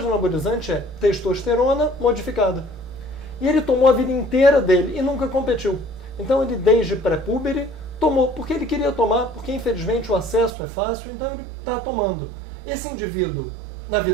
anabolizante é testosterona modificada. E ele tomou a vida inteira dele e nunca competiu. Então ele, desde pré-púbere, tomou porque ele queria tomar, porque infelizmente o acesso é fácil, então ele está tomando. Esse indivíduo, na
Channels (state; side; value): drops out; left; at 10.5 s